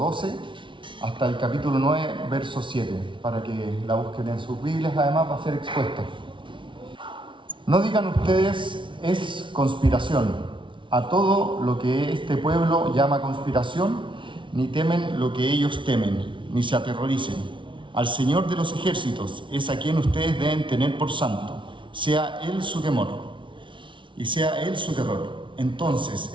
hasta el capítulo 9, verso 7, para que la busquen en sus Biblias, además va a ser expuesta. No digan ustedes, es conspiración, a todo lo que este pueblo llama conspiración, ni temen lo que ellos temen, ni se aterroricen. Al Señor de los ejércitos es a quien ustedes deben tener por santo, sea Él su temor y sea Él su terror. Entonces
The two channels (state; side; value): late; left; 0.24 ms